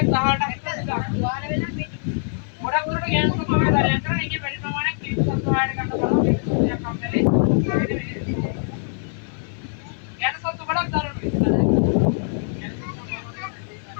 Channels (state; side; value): silent; right; 63 dB below the other